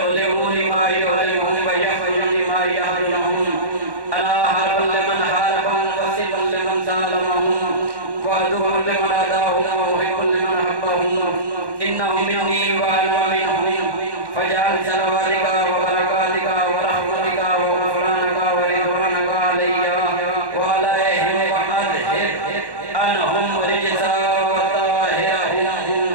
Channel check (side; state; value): left; late; 1.1 ms